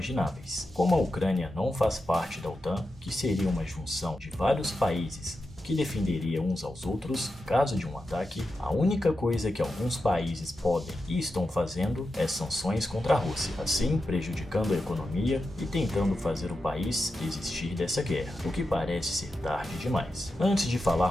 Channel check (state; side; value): normal; both; correlation 0.90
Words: Como a Ucrânia não faz parte da OTAN, que seria uma junção de vários países que defenderia uns aos outros caso de um ataque, a única coisa que alguns países podem e estão fazendo é sanções contra a Rússia, assim prejudicando a economia e tentando fazer o país desistir dessa guerra, o que parece ser tarde demais. Antes de